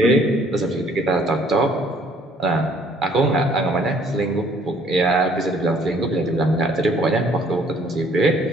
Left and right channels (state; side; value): normal; both; correlation 0.60